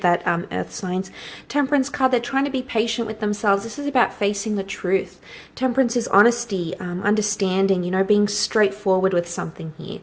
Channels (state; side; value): identical; both; correlation 1.00